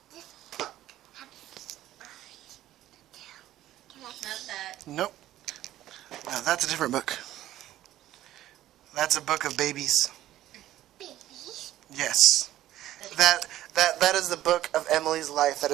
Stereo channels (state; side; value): quieter; left; 13.8 dB